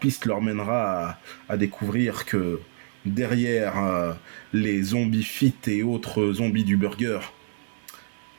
leur mènera à découvrir que derrière les zombies fit et autres zombies du burger,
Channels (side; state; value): left; silent; digital silence